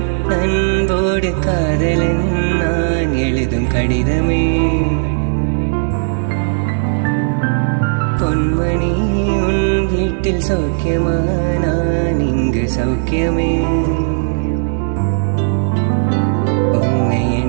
அன்போடு காதலன் நான் எழுதும் கடிதமே. பொன்மணி உன் வீட்டில் சௌக்கியமா நான் இங்கு சௌக்கியமே. உன்னை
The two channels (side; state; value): left; silent; 66 dB below the other